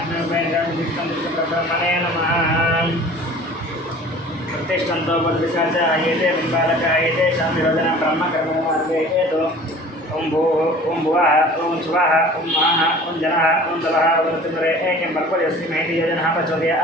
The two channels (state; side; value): normal; both; correlation 0.45